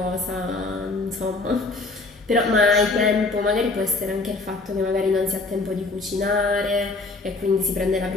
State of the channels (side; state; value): right; quieter; 3.5 dB